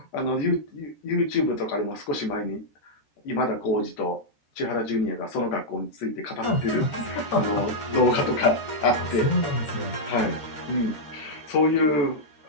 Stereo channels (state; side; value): late; right; 13 ms